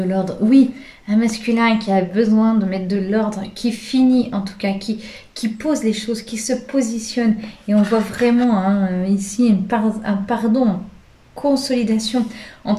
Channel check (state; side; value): identical; both; correlation 1.00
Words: l'ordre. Oui, un masculin qui a besoin de mettre de l'ordre, qui finit en tout cas, qui pose les choses, qui se positionne. Et on voit vraiment hein, ici un pardon, une consolidation. En